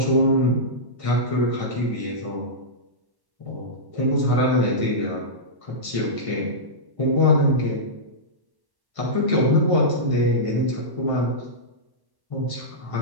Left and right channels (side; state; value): left; late; 1.1 ms